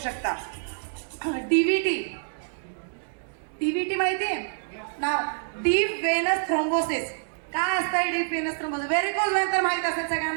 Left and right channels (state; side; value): silent; left; 60 dB below the other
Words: डीव्हीटी माहितीये नाव, डीप वेनस थ्रोम्बोसिस. काय असतं deep venous thrombosis? Varicose Wien तर माहित असेल